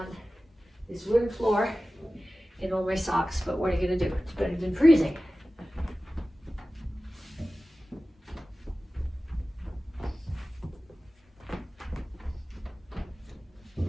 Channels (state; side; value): normal; both; correlation 0.96